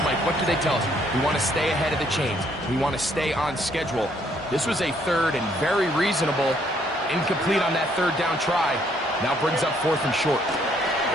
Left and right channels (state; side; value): normal; both; correlation 0.67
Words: Mike, what do they tell us? We want to stay ahead of the chains. We want to stay on schedule. This was a third and very reasonable. Incomplete on that third down try. Now brings up fourth and short.